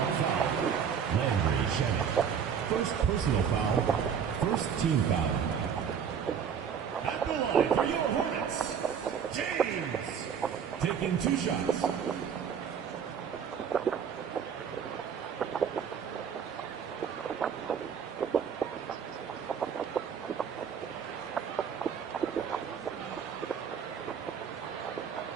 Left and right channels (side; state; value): left; quieter; 7.5 dB